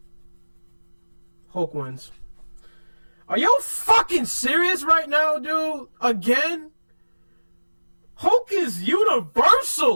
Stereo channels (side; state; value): both; inverted; correlation -1.00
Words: Hulk wins. Are you fucking serious right now, dude? Again? Hulk is